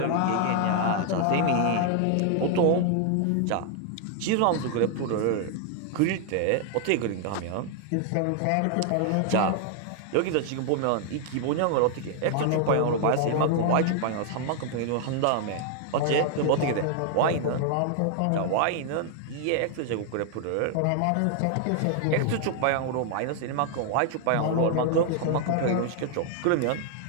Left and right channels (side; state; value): both; different; correlation 0.00